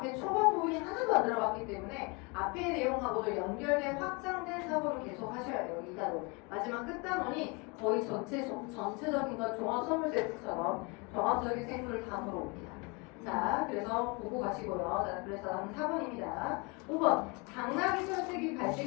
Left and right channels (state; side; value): quieter; right; 29.9 dB